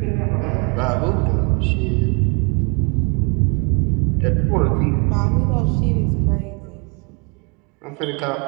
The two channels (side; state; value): left; quieter; 34.8 dB